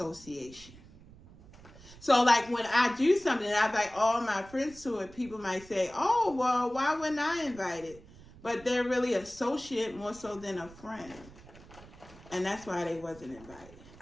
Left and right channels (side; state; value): right; noise; rumble, 21 dB below the sound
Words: So, like, when I do something and I invite all my friends to it, people might say, oh, well, why wouldn't I invite it? But they're really associate more so than a friend. And that's why they wasn't invited.